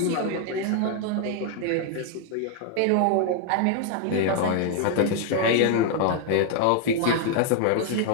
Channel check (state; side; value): different; both; correlation 0.00